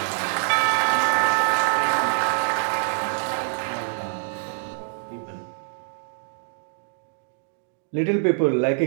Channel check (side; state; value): left; silent; digital silence